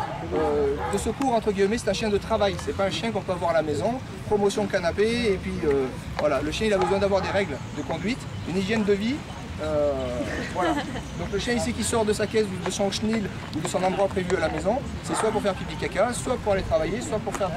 de secours, entre guillemets, c'est un chien de travail, c'est pas un chien qu'on peut avoir à la maison, promotion canapé, et puis voilà, le chien il a besoin d'avoir des règles de conduite, une hygiène de vie, voilà. Donc le chien ici qui sort de sa caisse, de son chenil ou de son endroit prévu à la maison, c'est soit pour faire pipi caca, soit pour aller travailler, soit pour faire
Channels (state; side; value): identical; both; correlation 1.00